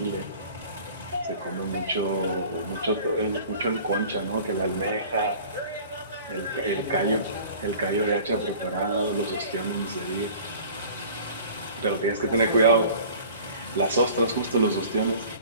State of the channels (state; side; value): inverted; both; correlation -0.45